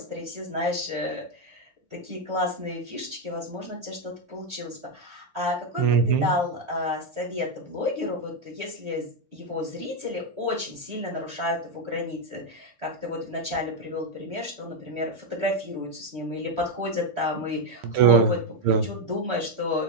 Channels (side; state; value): left; late; 6.7 ms